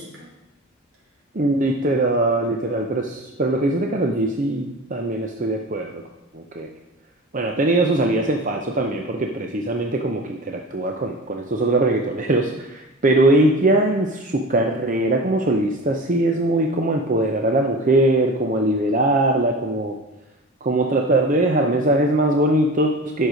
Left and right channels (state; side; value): normal; both; correlation 0.34